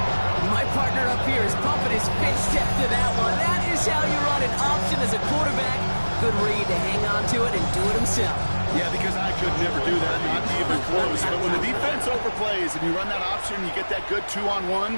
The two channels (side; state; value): both; inverted; correlation -1.00